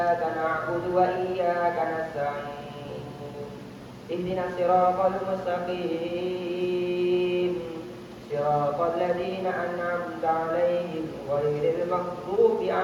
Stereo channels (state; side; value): identical; both; correlation 1.00